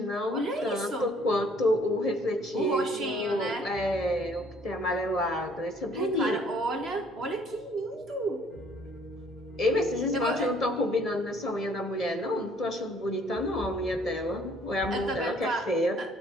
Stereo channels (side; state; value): both; normal; correlation 0.60